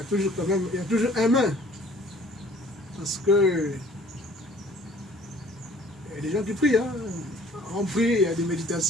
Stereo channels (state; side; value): normal; both; correlation 0.53